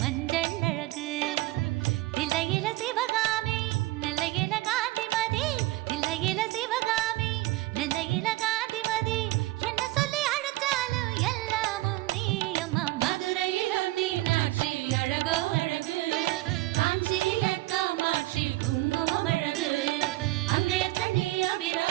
அழகு தில்லையில சிவகாமி நெல்லையில காந்திமதி தில்லையில சிவகாமி நெல்லையில காந்திமதி என்ன சொல்லி அழைச்சாலும் எல்லாமும் நீ அம்மா மதுரையிலும் மீனாட்சி அழகோ அழகு காஞ்சியில காமாட்சி குங்குமம் அழகு அங்கையத்த நீ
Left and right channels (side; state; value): left; quieter; 19.0 dB